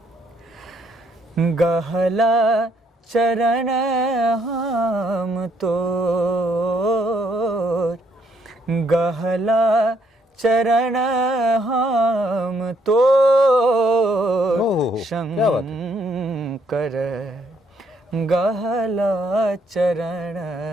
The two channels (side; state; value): both; normal; correlation 0.71